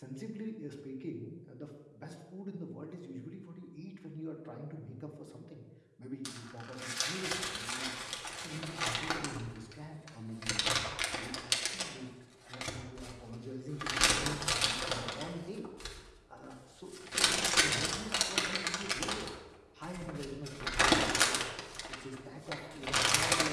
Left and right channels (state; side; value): identical; both; correlation 1.00